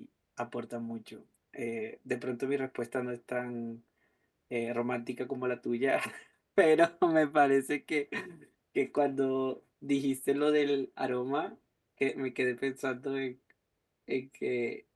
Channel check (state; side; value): identical; both; correlation 1.00